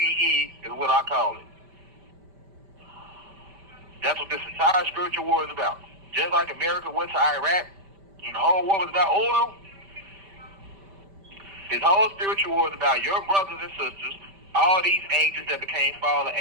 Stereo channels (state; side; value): late; left; 5.1 ms